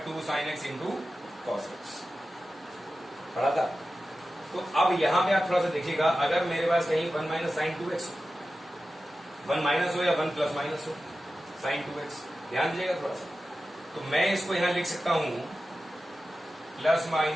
2 sine x into cos x, पढ़ा था। तो अब यहां पे आप थोड़ा सा देखिएगा, अगर मेरे पास कहीं 1 माइनस साइन 2x हो, 1 माइनस हो या 1 प्लस माइनस हो साइन 2x, ध्यान दीजिएगा थोड़ा सा, तो मैं इसको यहां लिख सकता हूं plus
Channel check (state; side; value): normal; both; correlation 0.93